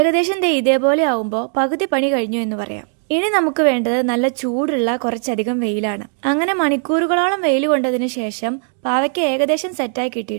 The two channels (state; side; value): silent; left; 56 dB below the other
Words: ഇതേപോലെ ആവുമ്പോ പകുതി പണി കഴിഞ്ഞു എന്ന് പറയാം. ഇനി നമുക്ക് വേണ്ടത് നല്ല ചൂടുള്ള കുറച്ചധികം വെയിലാണ്. അങ്ങനെ മണിക്കൂറുകളോളം വെയിൽ കൊണ്ടതിനു ശേഷം പാവയ്ക്ക ഏകദേശം സെറ്റായി